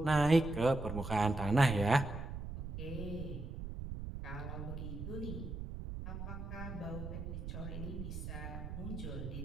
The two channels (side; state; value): right; noise; rumble, 7 dB below the sound